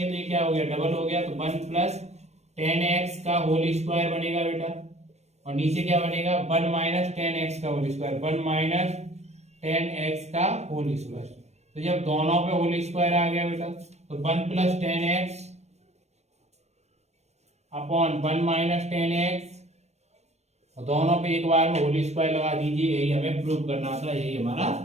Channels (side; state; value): left; late; 0.32 ms